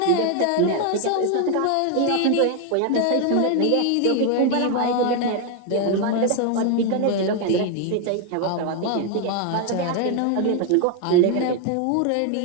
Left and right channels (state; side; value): different; both; correlation 0.01